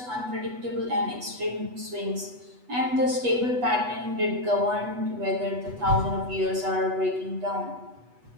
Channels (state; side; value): late; left; 8.1 ms